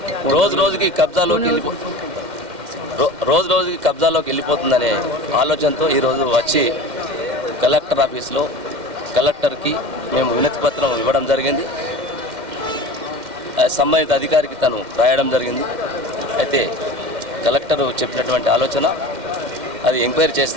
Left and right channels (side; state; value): left; late; 2.1 ms